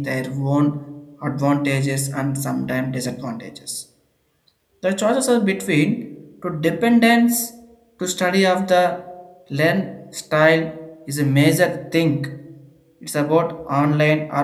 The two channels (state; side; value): identical; both; correlation 1.00